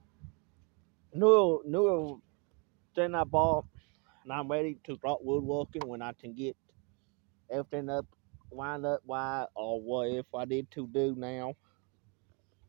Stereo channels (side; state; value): left; quieter; 33.8 dB